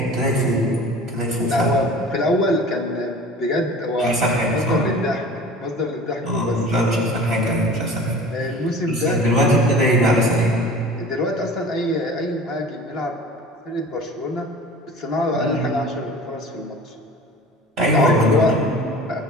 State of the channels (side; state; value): both; normal; correlation 0.41